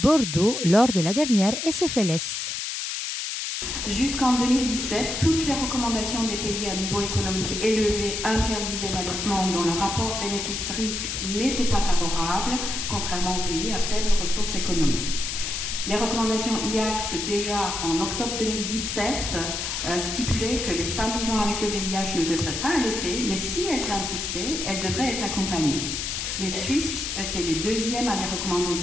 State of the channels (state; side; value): noise; left; hiss, 3 dB below the sound